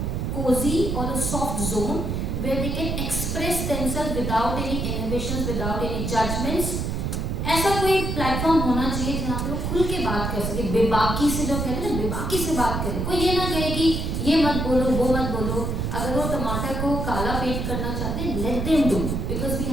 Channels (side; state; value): right; noise; rumble, 1 dB below the sound